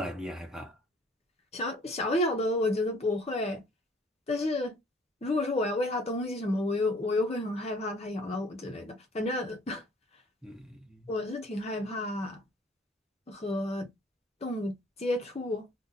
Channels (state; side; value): normal; both; correlation 0.55